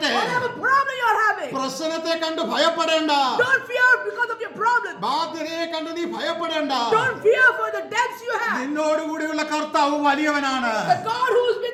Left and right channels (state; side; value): identical; both; correlation 1.00